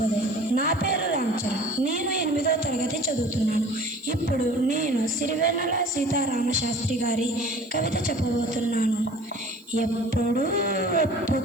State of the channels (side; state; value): right; noise; hiss, 28 dB below the sound